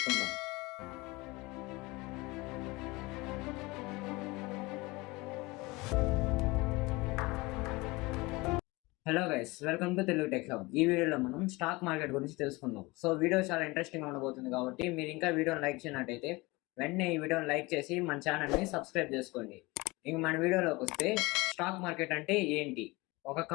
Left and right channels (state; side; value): quieter; right; 23.2 dB